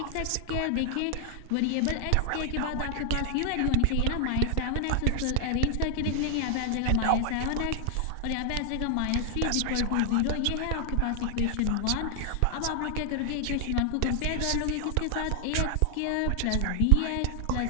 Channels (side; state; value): both; different; correlation 0.00